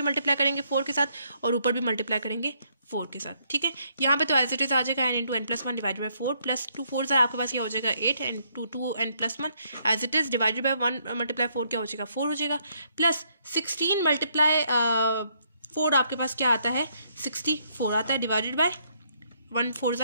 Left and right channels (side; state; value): both; inverted; correlation -0.72